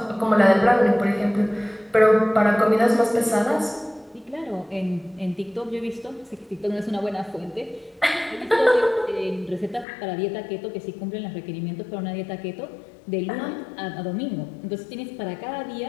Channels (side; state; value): right; drops out; at 9.9 s